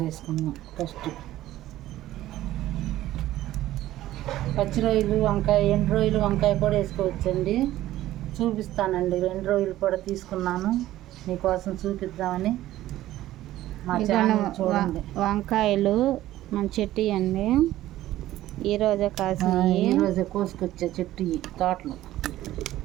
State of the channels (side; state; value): left; quieter; 14.6 dB